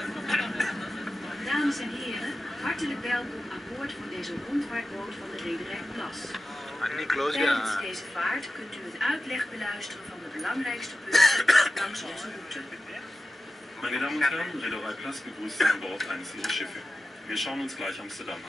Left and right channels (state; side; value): normal; both; correlation 0.93